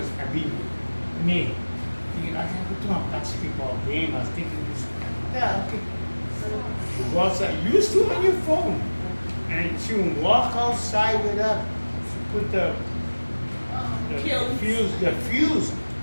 I mean, me, thinking, I have to do a basketball game. I was thinking this, yeah, okay. You go outside, you used to on your phone. And she would walk outside with her, she put the fuse.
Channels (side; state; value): both; inverted; correlation -1.00